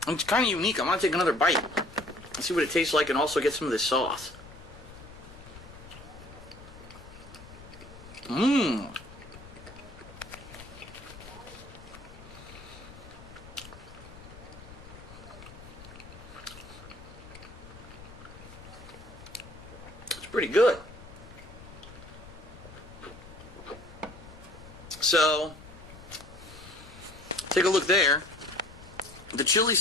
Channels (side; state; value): left; noise; rumble, 17 dB below the sound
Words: And it's kind of unique. I want to take another bite and see what it tastes like and also get some of this sauce. It's pretty good. So, take a look there. the chili